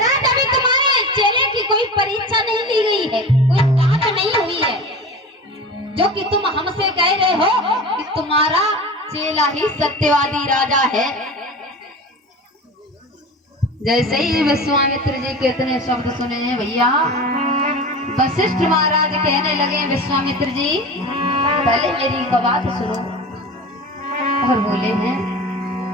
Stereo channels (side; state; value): both; normal; correlation 0.32